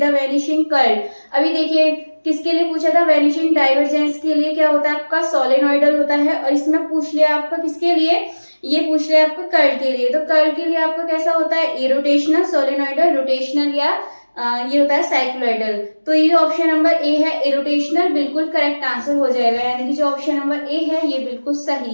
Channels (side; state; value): both; inverted; correlation -1.00